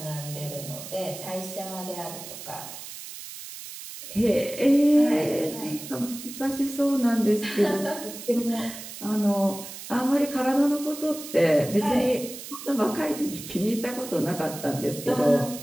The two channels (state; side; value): noise; right; hiss, 12 dB below the sound